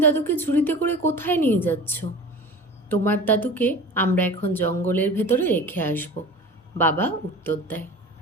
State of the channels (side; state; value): both; normal; correlation 0.37